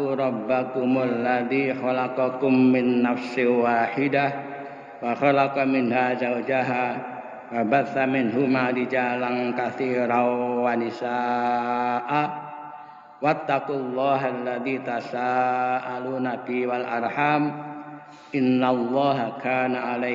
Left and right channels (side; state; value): both; identical; correlation 1.00